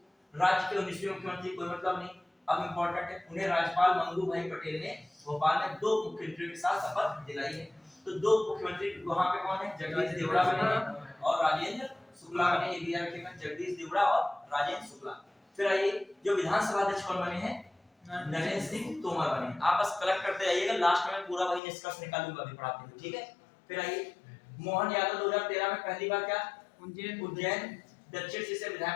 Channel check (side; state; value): right; drops out; at 21.6 s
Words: राज्य के 19वें मुख्यमंत्री, कोई मतलब नहीं, अब इंपॉर्टेंट है, उन्हें राज्यपाल मंगू भाई पटेल ने भोपाल में 2 मुख्यमंत्रियों के साथ शपथ दिलाई है। तो 2 मुख्यमंत्री वहां पे कौन है? जगदीश देवड़ा बने हैं और राजेंद्र शुक्ला बने। ये भी याद रखिएगा, जगदीश देवड़ा और राजेंद्र शुक्ला। फिर आइए, जो विधानसभा अध्यक्ष कौन बने हैं? नरेंद्र सिंह तोमर बने। आप बस कलेक्ट करते जाइएगा, लास्ट में पूरा वही निष्कर्ष निकालूंगा अभी पढ़ाते हुए। ठीक है, फिर आइए, मोहन यादव 2013 में पहली बार क्या उज्जैन दक्षिण से